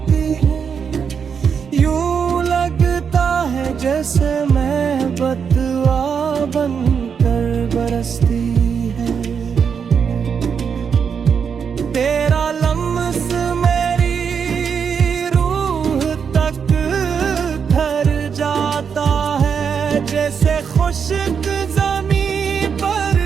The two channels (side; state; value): left; quieter; 6.7 dB